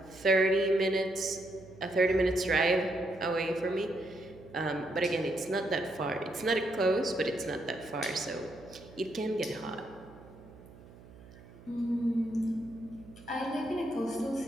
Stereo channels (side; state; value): right; noise; hum, 20 dB below the sound